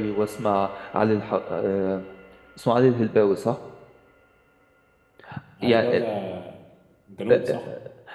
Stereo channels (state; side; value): identical; both; correlation 1.00